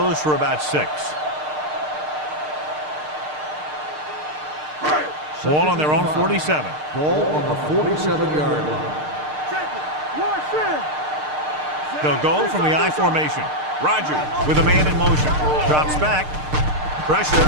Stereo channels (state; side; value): late; left; 6.6 ms